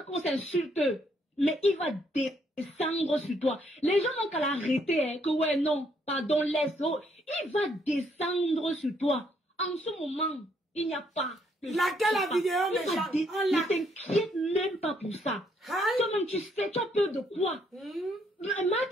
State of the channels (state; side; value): normal; both; correlation 0.71